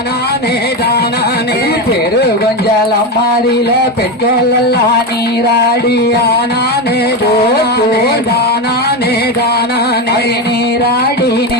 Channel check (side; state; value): both; normal; correlation 0.15